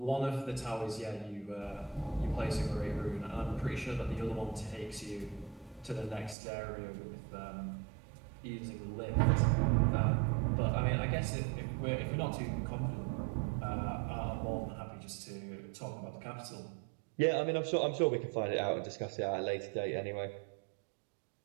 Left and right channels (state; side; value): drops out; left; at 6.4 s